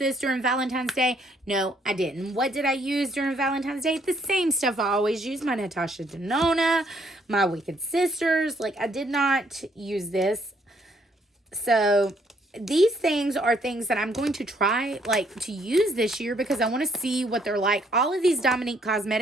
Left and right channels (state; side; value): normal; both; correlation 0.68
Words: during Valentine's Day. No, I didn't. What did I use during Valentine's Day? The same stuff I always use. My Natasha Denona, my Wicked Sisters. Like, I did not use this. So these things are things that I'm going to try like to use this year because I want to see what they're like. All of these Dominique